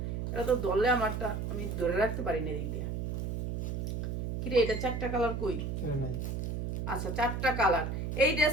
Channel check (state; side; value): noise; right; hum, 2 dB below the sound